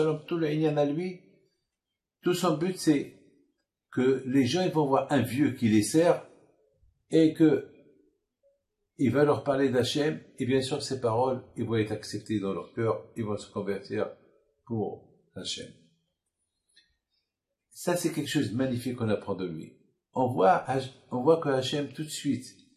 tout le inyan à lui, tout son but c'est que les gens ils vont voir un vieux qui les sert et que il va leur parler d'Hachem et bien sûr ces paroles ils vont être acceptées dans leur cœur, ils vont se convertir pour Hachem. Ça c'est quelque chose de magnifique qu'on apprend de lui. On voit que Hachem tout de suite,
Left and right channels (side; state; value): both; identical; correlation 1.00